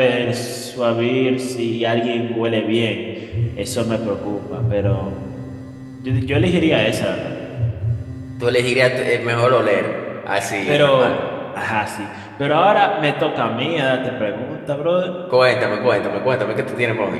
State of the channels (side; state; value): both; identical; correlation 1.00